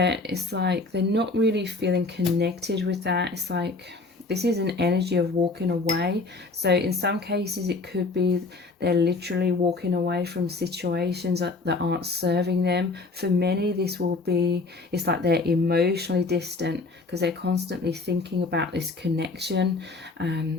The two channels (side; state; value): right; quieter; 3.6 dB